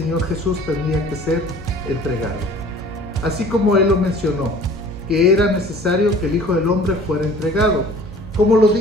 Jesús tendría que ser entregado. Así como Él lo mencionó, que era necesario que el Hijo del Hombre fuera entregado. Como lo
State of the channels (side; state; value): both; normal; correlation 0.49